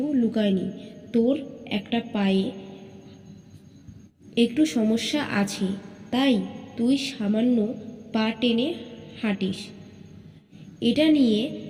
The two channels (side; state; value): both; identical; correlation 1.00